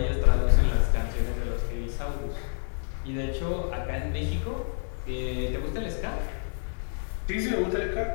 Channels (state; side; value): silent; right; digital silence